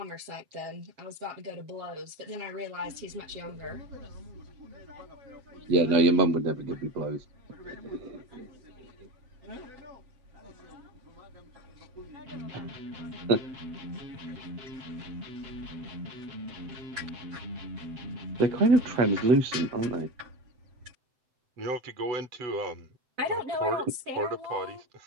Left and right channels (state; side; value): late; left; 7.8 ms